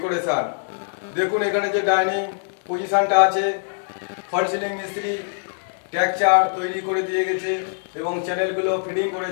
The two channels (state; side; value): silent; right; digital silence